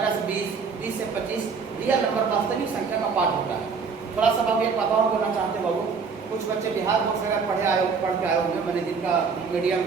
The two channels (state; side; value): quieter; left; 5.4 dB